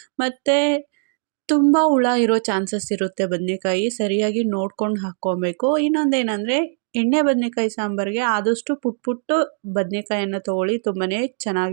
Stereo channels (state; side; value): silent; left; digital silence